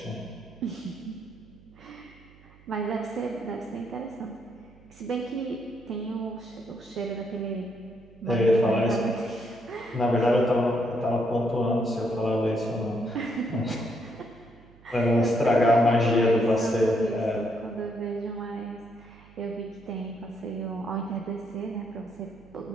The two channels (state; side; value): noise; right; hum, 25 dB below the sound